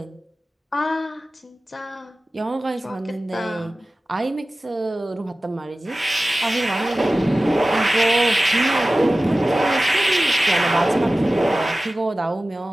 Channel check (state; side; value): normal; both; correlation 0.96